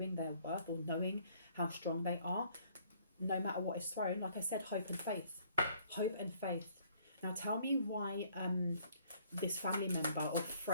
their worth, or knowing how strong they are, no matter what is thrown, like I said, hope and faith. Hope and faith. Now tell me why this family member or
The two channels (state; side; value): inverted; both; correlation -0.62